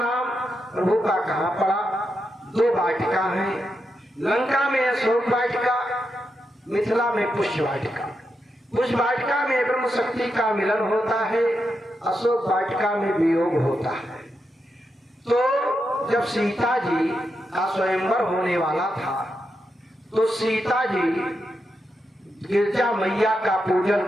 प्रभु का कहाँ पड़ा। दो वाटिका हैं, लंका में अशोक वाटिका, मिथिला में पुष्य वाटिका। पुष्य वाटिका में ब्रह्म शक्ति का मिलन होता है, अशोक वाटिका में वियोग होता है। तो जब सीता जी का स्वयंवर होने वाला था तो सीता जी गिरजा मैया का पूजन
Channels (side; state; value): both; normal; correlation 0.85